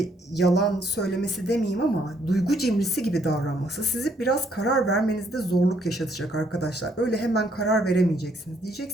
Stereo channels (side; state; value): both; normal; correlation 0.69